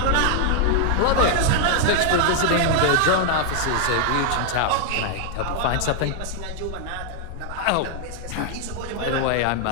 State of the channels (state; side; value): different; both; correlation 0.00